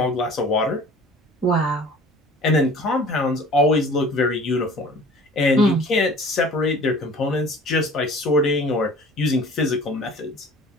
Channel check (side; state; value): both; normal; correlation 0.46